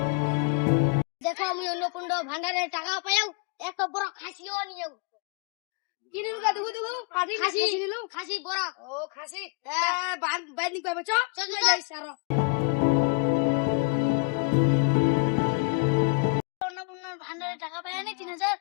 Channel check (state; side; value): quieter; right; 35.9 dB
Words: দেখো আমি অন্নকুণ্ড ভান্ডারের টাকা পাইও এত বড় খাসিও নিও কিনে দুগা দুগু খাসি নিলু খাসি বড় ও খাসি বাইর নিক পাবে চল যাই সারো অন্নপূর্ণার ভান্ডারে টাকা পাই নি